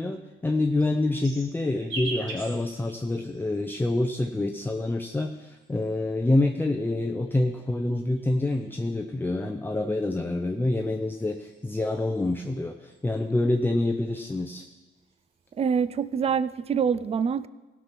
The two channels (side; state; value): both; normal; correlation 0.84